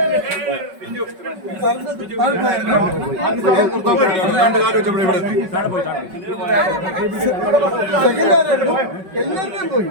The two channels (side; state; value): left; late; 5.4 ms